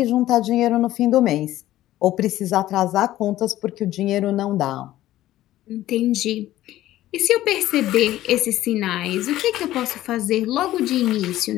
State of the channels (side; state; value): right; quieter; 14.6 dB